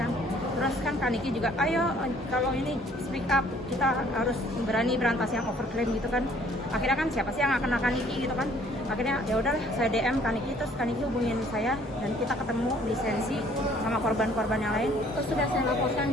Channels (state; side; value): normal; both; correlation 0.59